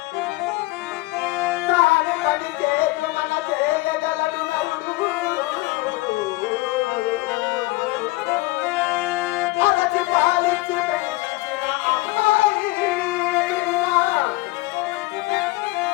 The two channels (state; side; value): quieter; right; 21.2 dB